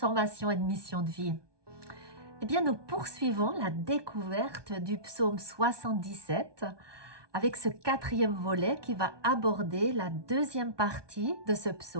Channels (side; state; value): left; late; 1.2 ms